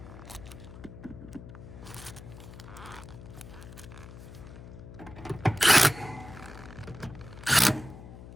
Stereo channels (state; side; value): noise; left; hum, 14 dB below the sound